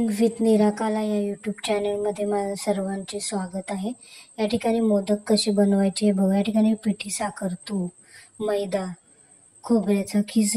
with निराकाला या YouTube चॅनलमध्ये माझं सर्वांचे स्वागत आहे. या ठिकाणी मोदक कसे बनवायचे हे बघा. या ठिकाणी पिठी साखर, तूप, मैदा, खोबऱ्याचा खीस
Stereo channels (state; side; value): identical; both; correlation 1.00